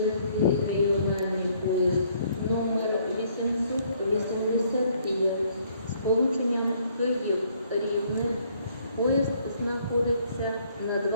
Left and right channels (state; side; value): inverted; both; correlation -0.65